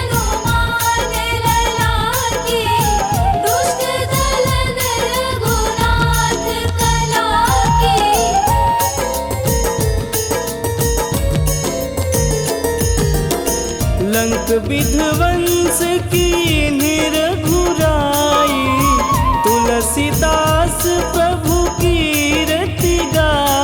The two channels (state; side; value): identical; both; correlation 1.00